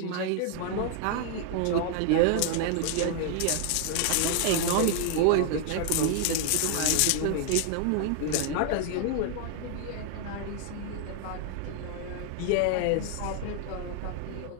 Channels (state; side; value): different; both; correlation 0.00